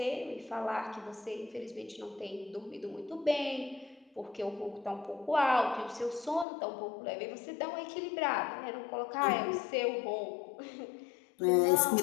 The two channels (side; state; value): right; drops out; at 6.5 s